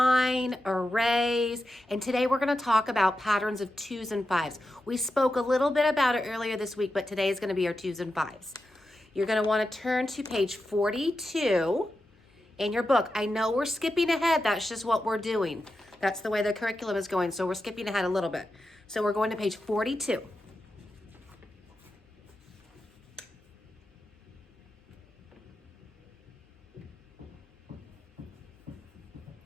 arrays, and today we're going to talk about patterns of 2s and 5s. We spoke a little bit about it earlier this week, but today is going to be our 2s and 5s. You're going to want to turn to page 42 in your book. I know we're skipping ahead. That's just what we're doing. That's the way the curriculum is going, so we're skipping ahead a little bit. So we're going to page 42.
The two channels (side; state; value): both; normal; correlation 0.90